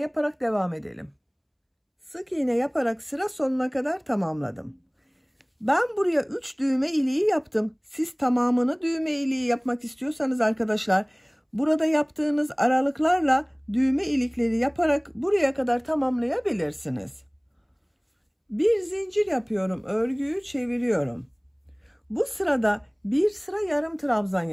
devam edelim. Sık iğne yaparak sıra sonuna kadar tamamladım. Ben buraya 3 düğme iliği yaptım. Siz tamamını düğme iliği yapmak istiyorsanız arkadaşlar, burada yaptığınız aralıklarla düğme ilikleri yaparak buraya kadar tamamlayabilirsiniz. Bir zincir yapıyorum, örgüyü çeviriyorum. Bu sırada bir sıra yarım trabzan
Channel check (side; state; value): both; identical; correlation 1.00